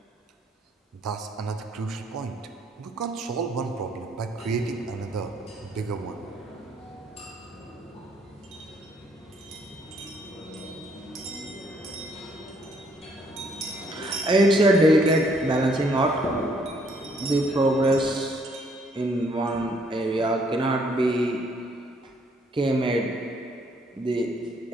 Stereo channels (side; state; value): both; normal; correlation 0.66